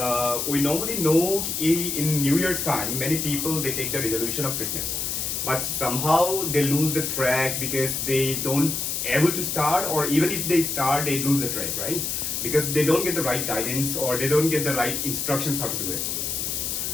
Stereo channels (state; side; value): noise; left; hiss, 2 dB below the sound